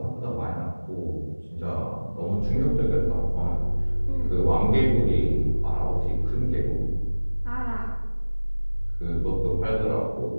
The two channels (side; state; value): both; inverted; correlation -1.00